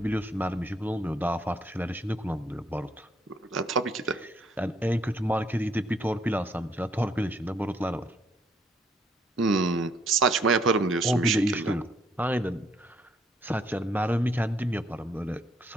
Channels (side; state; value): both; normal; correlation 0.67